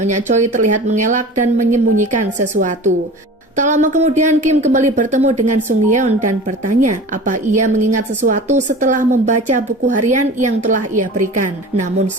Choi terlihat mengelak dan menyembunyikan sesuatu. Tak lama kemudian Kim kembali bertemu dengan Sungyeon dan bertanya apa ia mengingat sesuatu setelah membaca buku harian yang telah ia berikan. Namun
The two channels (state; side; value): normal; both; correlation 0.37